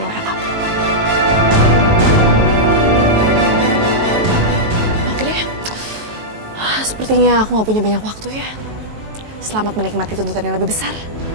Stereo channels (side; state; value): left; late; 19 ms